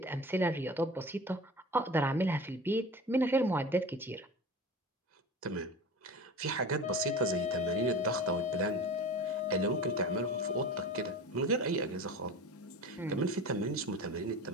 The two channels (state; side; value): normal; both; correlation 0.34